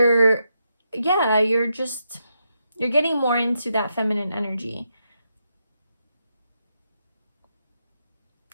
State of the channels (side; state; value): both; inverted; correlation -0.83